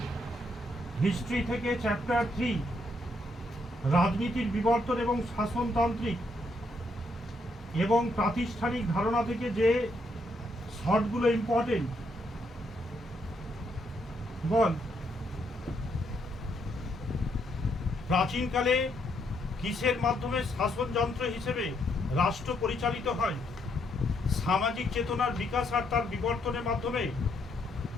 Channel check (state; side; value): normal; both; correlation 0.75